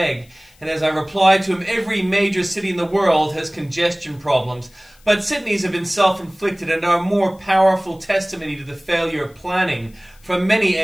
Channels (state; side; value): noise; left; hiss, 30 dB below the sound